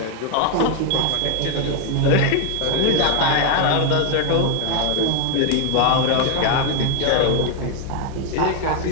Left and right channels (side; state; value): both; different; correlation 0.01